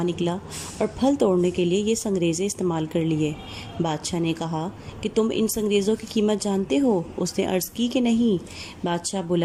نکلا اور پھل توڑنے کے لیے یہ سنگریزے استعمال کر لیے۔ بادشاہ نے کہا کہ تم ان سنگریزوں کی قیمت جانتے ہو؟ اس نے عرض کی کہ نہیں۔ بادشاہ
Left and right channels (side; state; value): both; identical; correlation 1.00